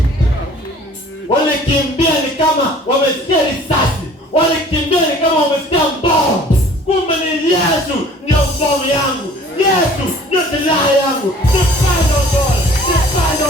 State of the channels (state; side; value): normal; both; correlation 0.51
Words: Walikimbia ni kama wamesikia risasi. Walikimbia ni kama wamesikia bomu. Kumbe ni Yesu ndio bomu yangu. Yesu ndio silaha yangu. Depend on God.